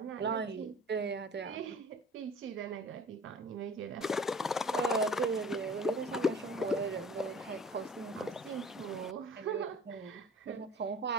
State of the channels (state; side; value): normal; both; correlation 0.45